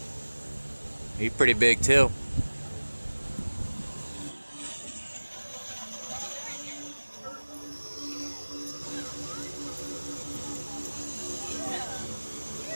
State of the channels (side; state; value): both; inverted; correlation -1.00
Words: He's pretty big too.